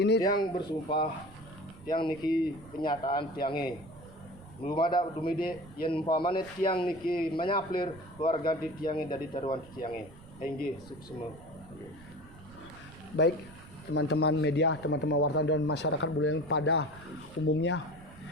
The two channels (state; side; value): noise; right; rumble, 20 dB below the sound